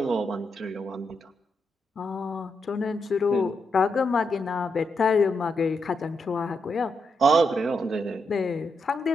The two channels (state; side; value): normal; both; correlation 0.82